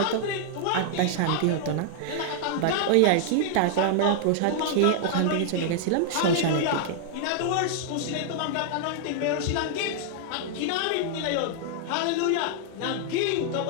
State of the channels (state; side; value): different; both; correlation -0.01